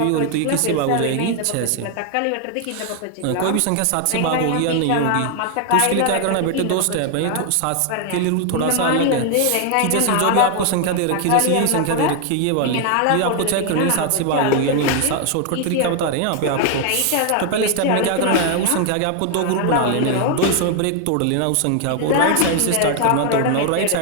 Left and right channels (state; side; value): different; both; correlation 0.00